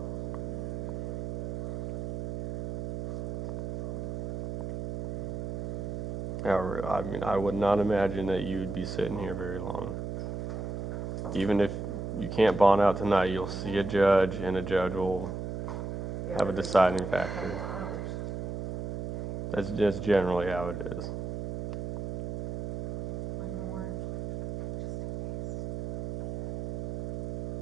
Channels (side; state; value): right; noise; hum, 5 dB below the sound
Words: However, I mean, I would not imagine that you would be sitting here very long. Even if you can't bond out tonight, you'll see a judge, and a judge will have a deciding factor. That's just generally how it is. One more. Just in case.